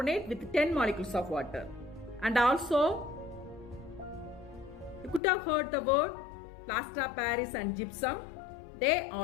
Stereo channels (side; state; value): right; drops out; at 5.2 s